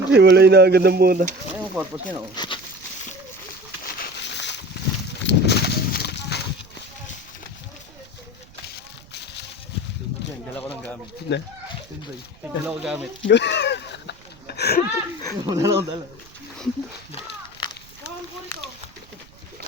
Hiwalay na agad ng muna. Ano yung purpose niya no? Dala ko ng gamit. Na? Dala ko gamit. Dala.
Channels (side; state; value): right; noise; rumble, 24 dB below the sound